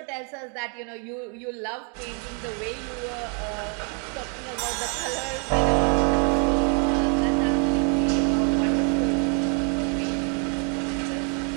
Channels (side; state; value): left; quieter; 38.7 dB